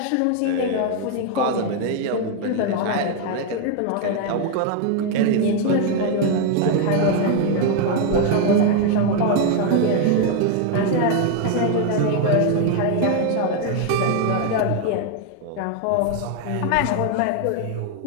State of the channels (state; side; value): different; both; correlation 0.01